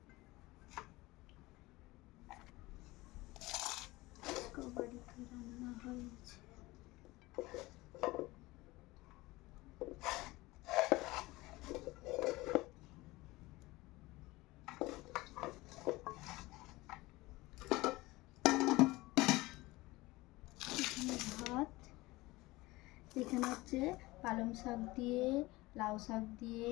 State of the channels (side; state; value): right; quieter; 20.4 dB